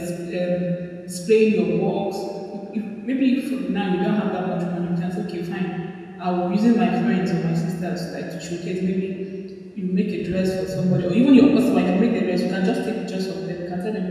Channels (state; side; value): identical; both; correlation 1.00